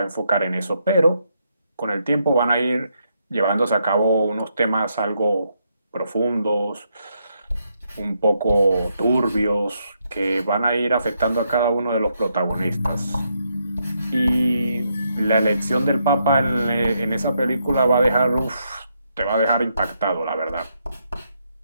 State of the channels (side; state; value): both; inverted; correlation -0.78